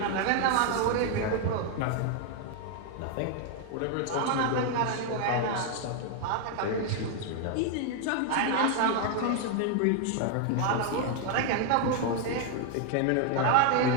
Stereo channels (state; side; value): different; both; correlation 0.00